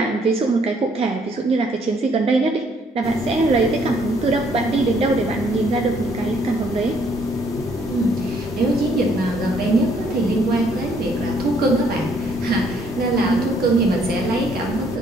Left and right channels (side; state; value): both; normal; correlation 0.66